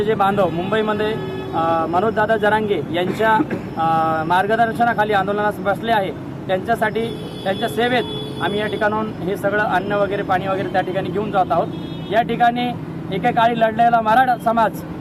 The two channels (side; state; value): both; identical; correlation 1.00